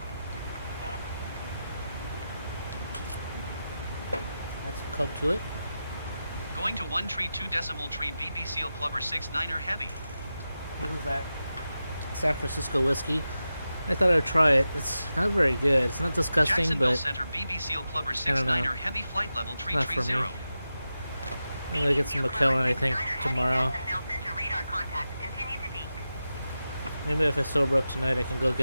Add some coke to it. Going to 132.3 BP Seal Clubber 69er Heavy. This is that San Francisco whiskey. I thought I'd try it. It's not very good. It's not disgusting, Jacksonville but Center BB Seal Clubber I don't know. 69er Heavy Flight Level Not for me. 330. I'm gonna get some McKellen, I think, tomorrow. Maybe if I sober up tonight, I can go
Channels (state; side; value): inverted; both; correlation -0.92